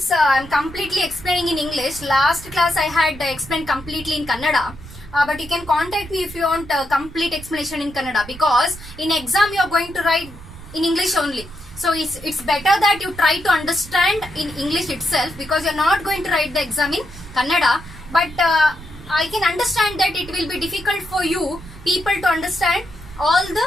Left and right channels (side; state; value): right; noise; rumble, 16 dB below the sound